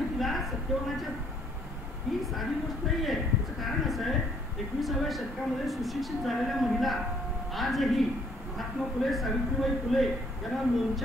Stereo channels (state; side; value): normal; both; correlation 0.65